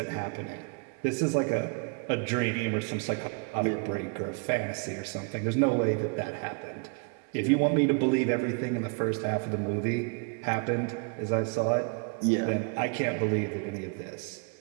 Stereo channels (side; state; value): left; quieter; 35.9 dB